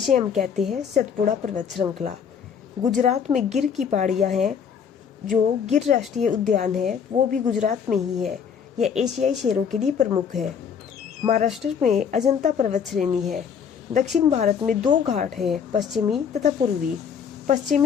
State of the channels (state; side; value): quieter; right; 7.2 dB